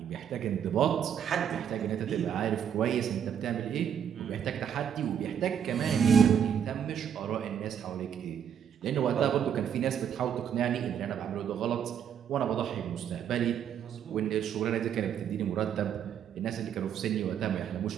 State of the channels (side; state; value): left; quieter; 8.5 dB